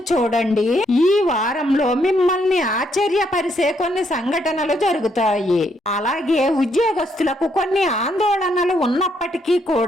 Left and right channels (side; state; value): both; normal; correlation 0.74